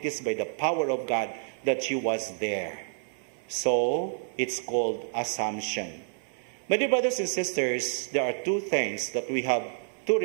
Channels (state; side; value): silent; left; 59 dB below the other